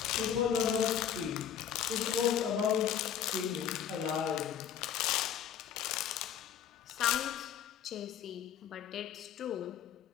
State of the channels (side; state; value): right; quieter; 9.1 dB